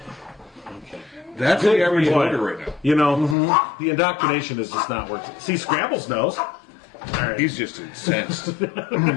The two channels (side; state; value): right; drops out; at 3.4 s